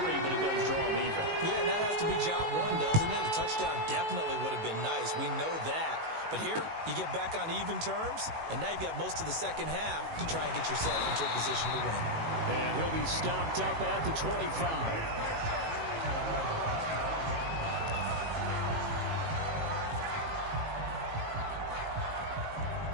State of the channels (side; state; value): left; late; 19 ms